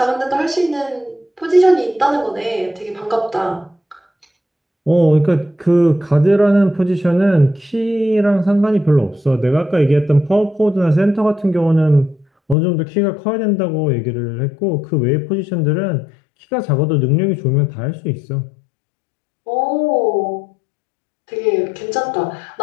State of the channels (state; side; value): drops out; right; at 12.6 s